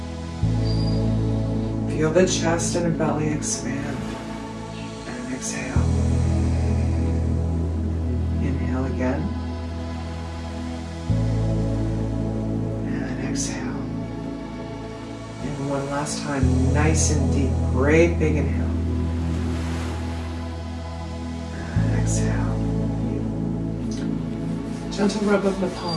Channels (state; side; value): identical; both; correlation 1.00